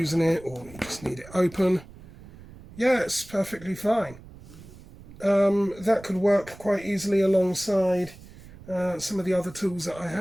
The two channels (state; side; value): noise; right; rumble, 19 dB below the sound